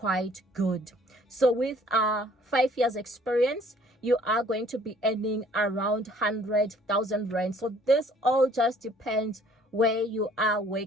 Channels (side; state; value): both; normal; correlation 0.57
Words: good. So with 5 years experience, you are going to be earning around 100,000 rand. So this all just depends where you are